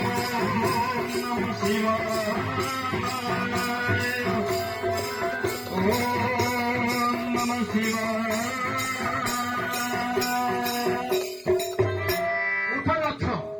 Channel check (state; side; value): identical; both; correlation 1.00